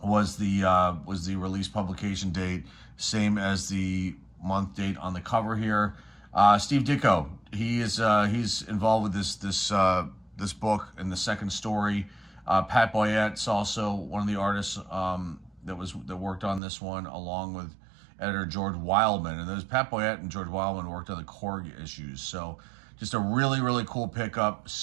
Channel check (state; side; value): drops out; left; at 16.6 s